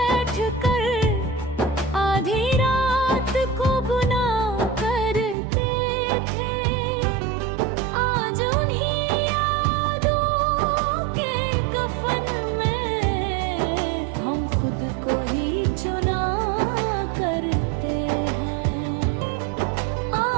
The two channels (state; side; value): drops out; left; at 5.4 s